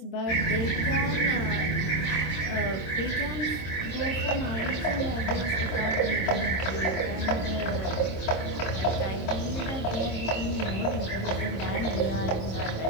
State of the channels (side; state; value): right; late; 27 ms